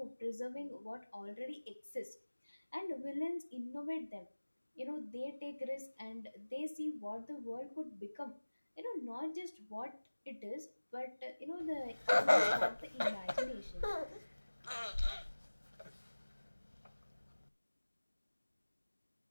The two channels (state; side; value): inverted; both; correlation -1.00